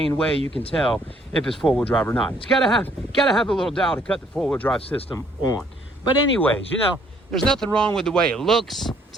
way you can tell if it's four-wheel drive or not. It's gotta have a little dial to cut the four-wheel drive system on. But anyways, there's nothing wrong with the way it looks.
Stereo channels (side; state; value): both; normal; correlation 0.64